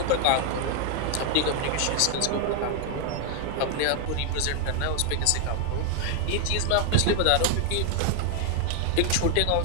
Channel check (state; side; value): different; both; correlation 0.00